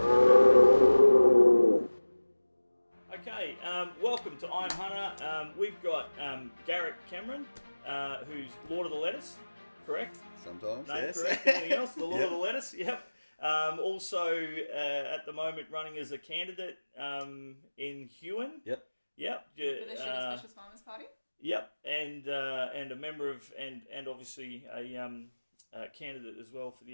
Okay, welcome to I'm Hunter. We've got Garrick Cameron, who's Lord of the Lettuce, correct? Sometimes, No, yes. correct. Anything else? The Lord Yep. of the Lettuce, yep. Also, at the moment, running as a candidate in Huon. Yep. Yep. For the Sugar Specialist Farmers Party? Yep, and a member of and obviously a candidate as well for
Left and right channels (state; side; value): inverted; both; correlation -1.00